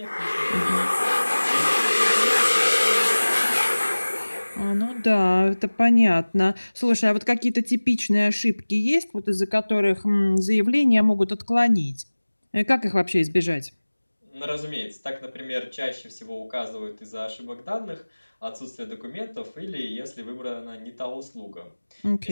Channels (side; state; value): both; inverted; correlation -1.00